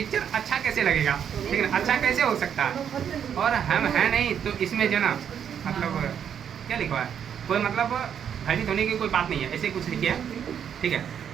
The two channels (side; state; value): left; quieter; 8.4 dB